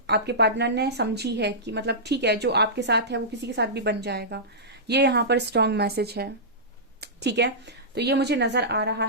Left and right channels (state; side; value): normal; both; correlation -0.16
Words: आपके पार्टनर ने समझी है कि मतलब ठीक है, जो आपके साथ है वो किसी के साथ भी बन जाएगा। ये यहाँ पर स्ट्रॉन्ग मैसेज है। ठीक है, तो ये मुझे नजर आ रहा